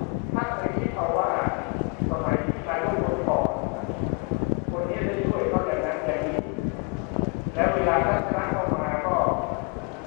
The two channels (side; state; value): right; quieter; 33.6 dB